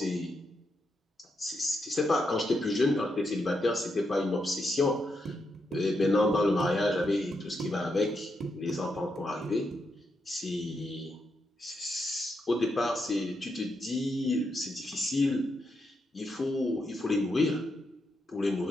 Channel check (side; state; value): both; normal; correlation 0.83